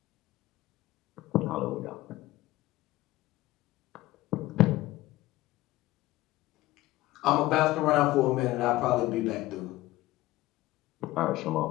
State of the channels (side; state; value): right; quieter; 17.3 dB